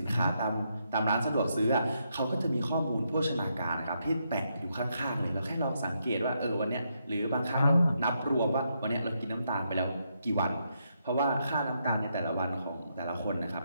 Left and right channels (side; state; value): both; inverted; correlation -0.79